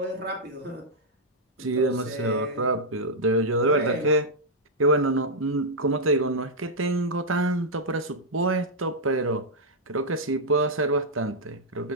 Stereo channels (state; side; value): normal; both; correlation -0.06